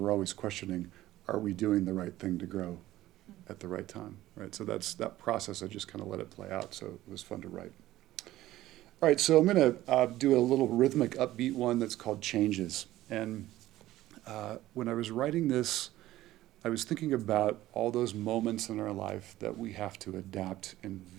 always questioning, are we doing the right thing to grow at the right time, right? So that process, I just kind of let it play out, so it was fun to write. All right, so I'm going to do a little rhythmic, upbeat one that's called Changes. And when I was writing this, I was thinking about all those moments in our life that we have to adapt in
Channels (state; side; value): quieter; left; 15.3 dB